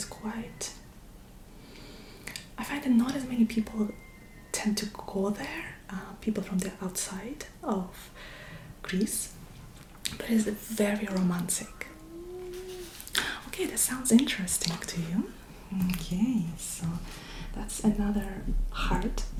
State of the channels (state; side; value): identical; both; correlation 1.00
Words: quite... I find that not as many people tend to go there, people from the outside of Greece, but it's very romantic. Okay, that sounds interesting to you. Okay, so that's another heart,